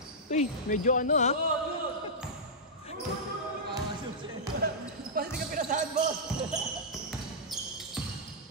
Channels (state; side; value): normal; both; correlation -0.11